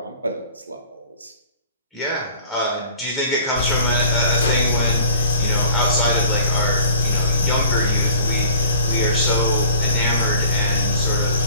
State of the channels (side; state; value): both; inverted; correlation -0.49